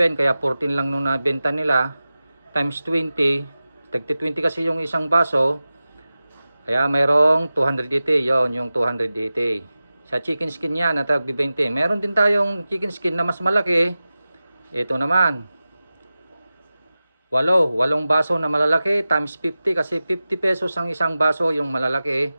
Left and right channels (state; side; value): inverted; both; correlation -0.95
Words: kaya 14 lang nung nabenta nila, times 20, tagti 20 kasi yung isang baso, kaya mayroong 280. Yon yung 280 sa chicken skin yan na tag 20. Meron din tayong chicken skin na mas malaki. Ito naman, 8 baso na malalaki times 50, kasi 50 pesos ang isang baso yung malalaki.